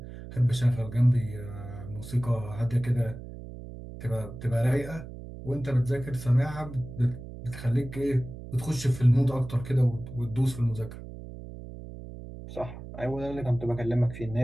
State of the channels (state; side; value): noise; right; hum, 12 dB below the sound